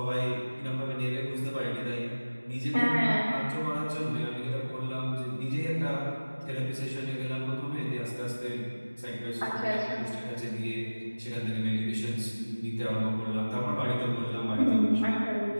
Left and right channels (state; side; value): inverted; both; correlation -1.00